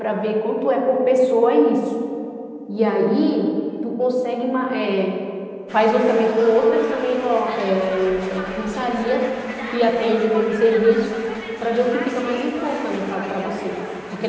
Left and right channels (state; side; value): identical; both; correlation 1.00